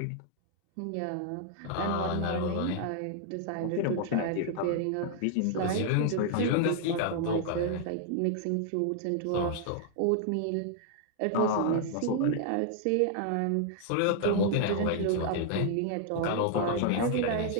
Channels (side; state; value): both; different; correlation 0.00